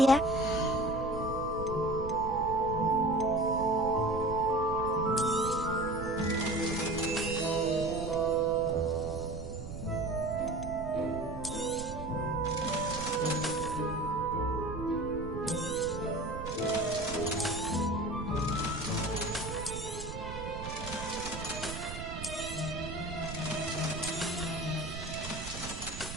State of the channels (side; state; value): right; noise; rumble, 9 dB below the sound